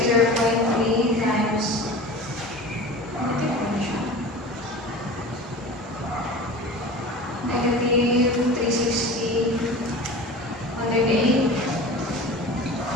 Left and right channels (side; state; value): both; normal; correlation 0.35